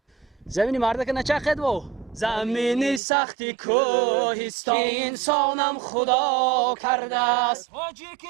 زمینی مرده که نچخد و زمینی سختی کوهستان انسانم خدا کرده است.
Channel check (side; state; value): left; drops out; at 3.0 s